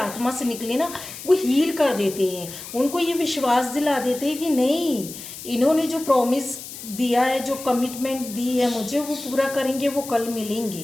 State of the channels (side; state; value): left; noise; hiss, 12 dB below the sound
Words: से निकले ना, वो हील कर देते हैं, उनको ये विश्वास दिला देते हैं कि नहीं, इन्होंने जो प्रॉमिस दिया है, जो कमिटमेंट दी है मुझे, वो पूरा करेंगे, वो कल